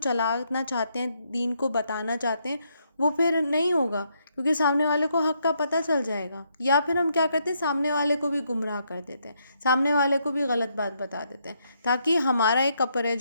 چاہتے ہیں، دین کو بتانا چاہتے ہیں، وہ پھر نہیں ہوگا، کیونکہ سامنے والے کو حق کا پتہ چل جائے گا. یا پھر ہم کیا کرتے ہیں، سامنے والے کو بھی گمراہ کر دیتے ہیں، سامنے والے کو بھی غلط بات بتا دیتے ہیں، تاکہ ہمارا ایک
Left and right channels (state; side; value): inverted; both; correlation -0.76